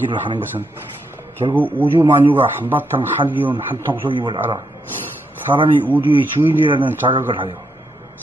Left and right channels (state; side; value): normal; both; correlation 0.80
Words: 하는 것은 결국 우주만유가 한바탕 한기운 한통속임을 알아 사람이 우주의 주인이라는 자각을 하여